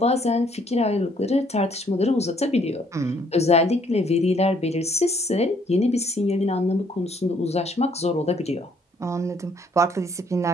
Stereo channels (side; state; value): both; normal; correlation 0.65